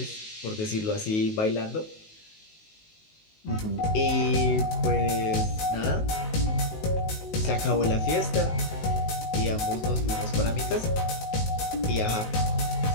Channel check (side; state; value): right; late; 19 ms